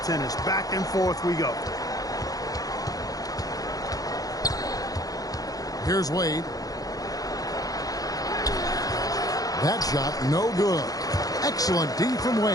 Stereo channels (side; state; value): right; late; 0.18 ms